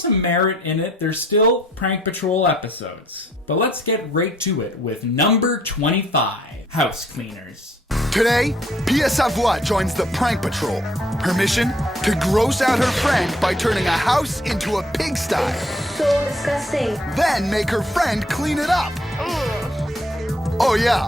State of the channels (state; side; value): normal; both; correlation 0.64